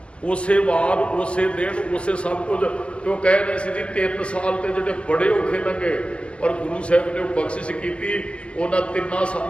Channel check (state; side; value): late; right; 0.059 ms